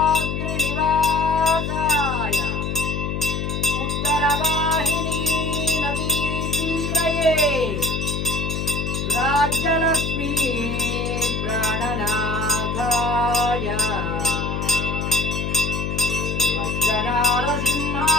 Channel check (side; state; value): left; noise; hum, 2 dB below the sound